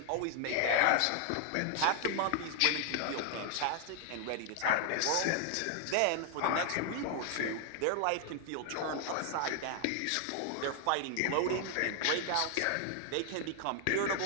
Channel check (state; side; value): different; both; correlation 0.00